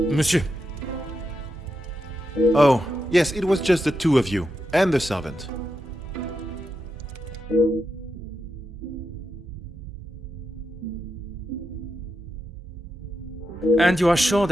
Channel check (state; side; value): normal; both; correlation 0.86